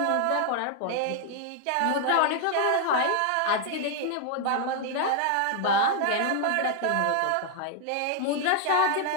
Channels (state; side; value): different; both; correlation 0.00